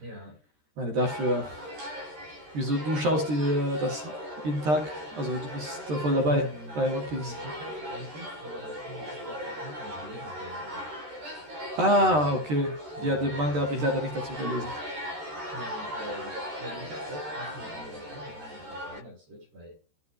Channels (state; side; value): late; left; 13 ms